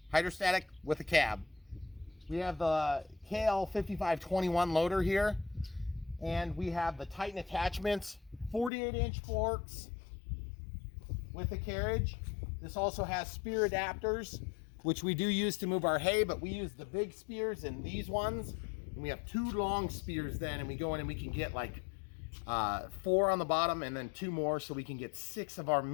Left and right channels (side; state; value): right; drops out; at 8.7 s